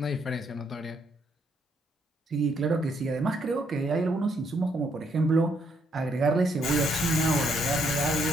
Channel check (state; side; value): normal; both; correlation 0.72